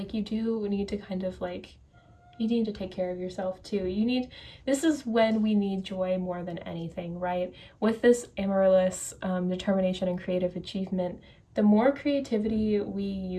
you do need to kind of like, you need to take care of yourself too. This is when we need joy more than anything, right? With this Amaryllis determination and creative achievement, the more creativity we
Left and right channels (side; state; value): both; identical; correlation 1.00